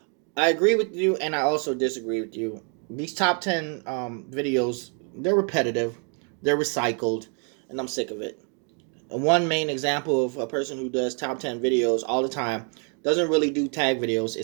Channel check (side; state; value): left; quieter; 39.9 dB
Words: I agree with you, and I also disagree with you. These top 10 videos, they're repetitive. They're recycled, and I'm sick of it. And one main example of a person who does top 10 videos all the time, doesn't really do tag videos,